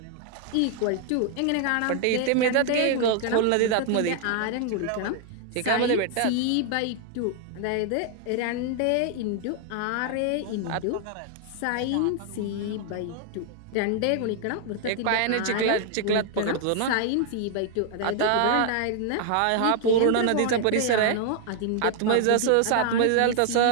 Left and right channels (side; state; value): both; different; correlation 0.00